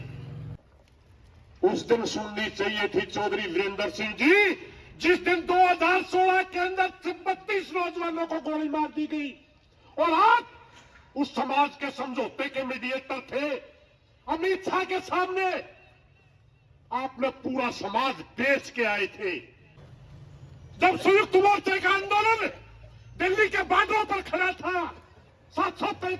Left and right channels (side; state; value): both; identical; correlation 1.00